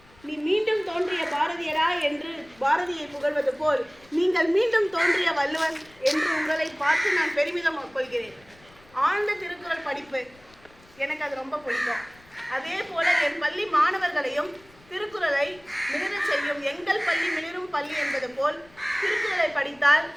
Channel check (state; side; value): noise; left; rumble, 28 dB below the sound